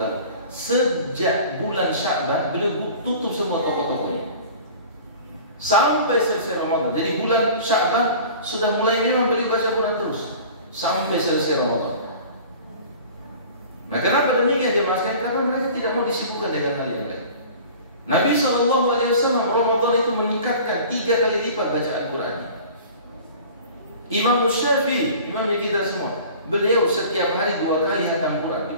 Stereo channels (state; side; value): inverted; both; correlation -0.43